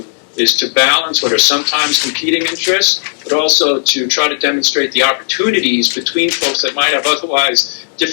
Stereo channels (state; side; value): silent; right; 58 dB below the other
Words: is to balance what are sometimes competing interests, but also to try to demonstrate the opportunities between folks that might have otherwise